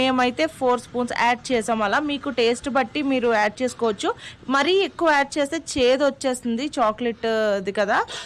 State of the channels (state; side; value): identical; both; correlation 1.00